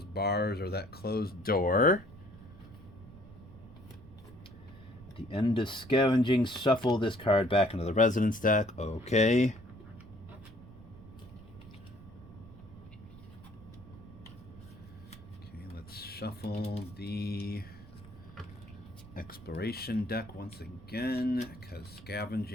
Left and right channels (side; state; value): right; noise; rumble, 18 dB below the sound